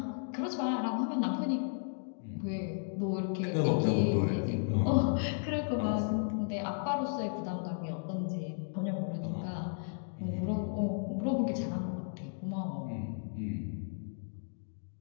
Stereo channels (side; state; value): right; silent; digital silence